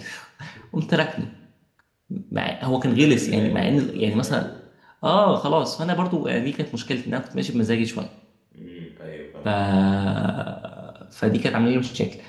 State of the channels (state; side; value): identical; both; correlation 1.00